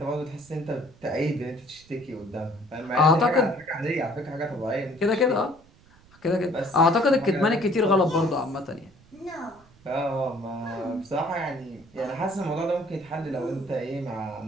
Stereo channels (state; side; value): noise; right; rumble, 27 dB below the sound